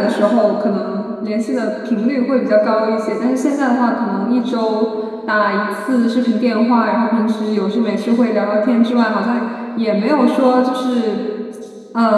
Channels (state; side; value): identical; both; correlation 1.00